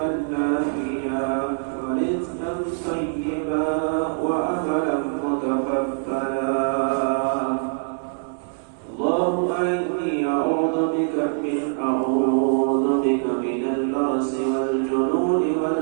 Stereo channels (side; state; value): left; silent; 63 dB below the other